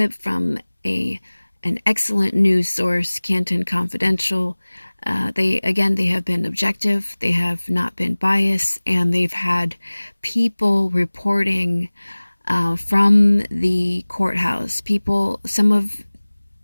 from an excellent news source, Canton Confidential. They have been objective, they have not been biased, and they've had people reporting from the courthouse. Some of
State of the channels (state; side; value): inverted; both; correlation -1.00